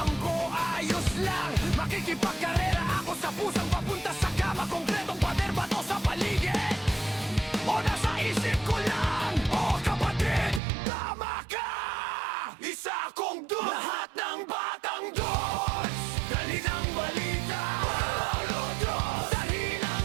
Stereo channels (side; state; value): left; drops out; at 10.6 s